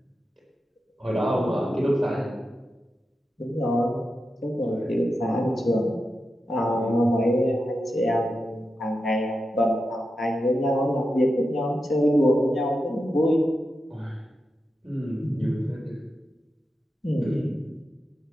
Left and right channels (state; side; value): normal; both; correlation 0.89